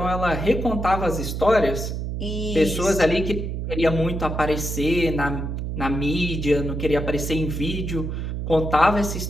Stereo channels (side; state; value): right; noise; hum, 4 dB below the sound